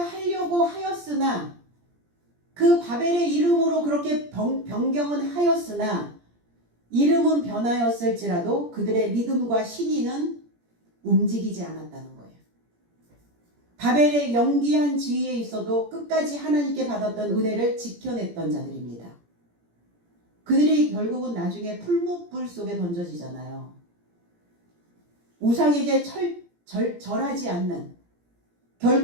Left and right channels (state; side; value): late; left; 17 ms